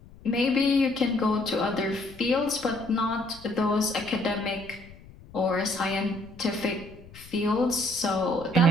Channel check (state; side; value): noise; left; rumble, 21 dB below the sound